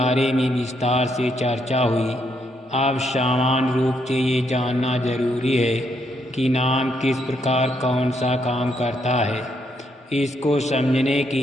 में विस्तार से चर्चा हुई। अब सामान्य रूप से ये जानना जरूरी है कि नाम किस प्रकार कौन सा काम करता है। इसको समझने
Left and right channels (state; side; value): normal; both; correlation 0.75